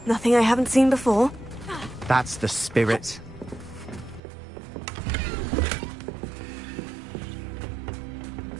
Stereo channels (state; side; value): drops out; left; at 4.2 s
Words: Nothing I haven't seen before. That's the spirit.